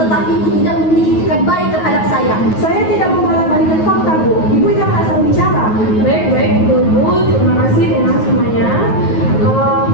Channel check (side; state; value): right; late; 9.4 ms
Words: Ibu tidak memiliki etikat baik terhadap saya. Saya tidak membolak-balikan fakta Bu. Ibu jangan asal bicara. Baik, Bu. Terima kasih dengan semuanya.